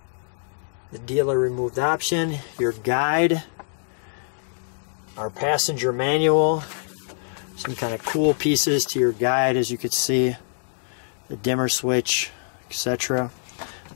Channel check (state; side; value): silent; right; digital silence